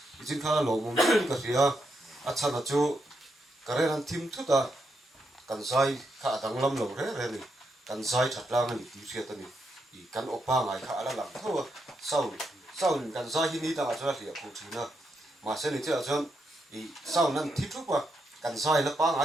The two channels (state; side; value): normal; both; correlation 0.81